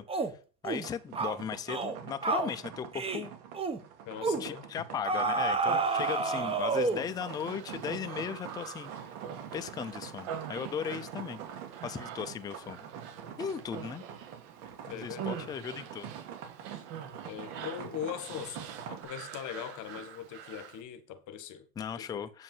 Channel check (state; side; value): normal; both; correlation 0.17